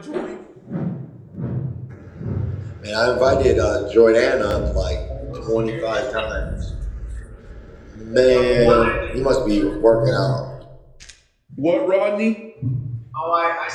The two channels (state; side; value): identical; both; correlation 1.00